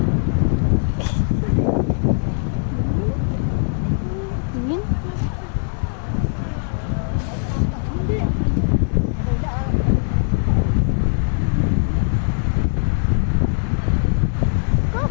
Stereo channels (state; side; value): silent; right; digital silence